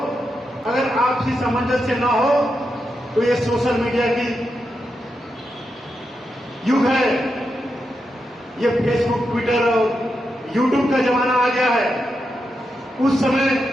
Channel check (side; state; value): both; normal; correlation 0.86